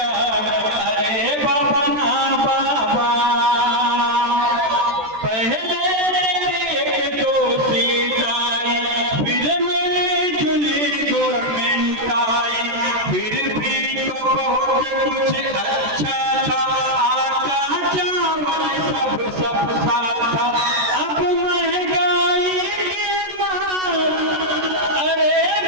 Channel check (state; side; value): late; left; 14 ms